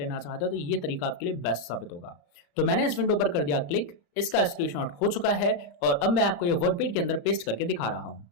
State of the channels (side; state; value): right; late; 35 ms